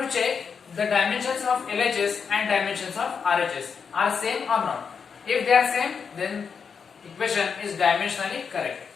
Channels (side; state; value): right; quieter; 6.1 dB